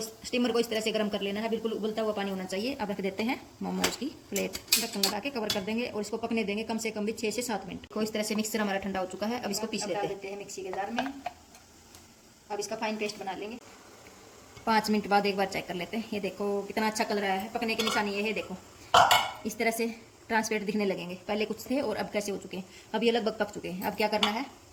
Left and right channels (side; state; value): both; identical; correlation 1.00